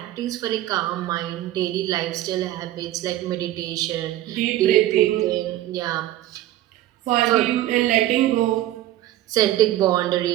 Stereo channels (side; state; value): left; quieter; 14.3 dB